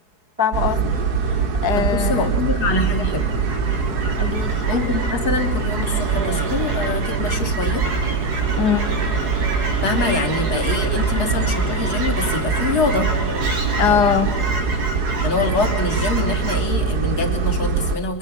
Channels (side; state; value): left; late; 4.7 ms